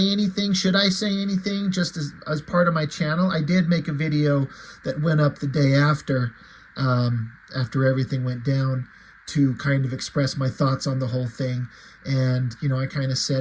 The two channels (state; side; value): identical; both; correlation 1.00